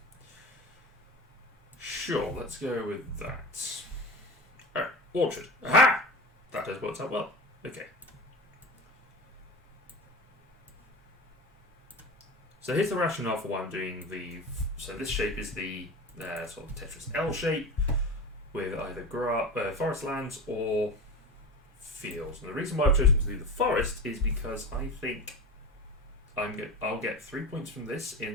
Sure, let's go with that. Alright, orchard. Aha! That has worked out well. Okay. So here's the rationale for why I'm doing so this shape is the sort of Tetris L shape with either forest lands or fields. And the reason why I've chosen to do the forest is because I think I'll get 3 points from this at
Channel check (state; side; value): normal; both; correlation 0.29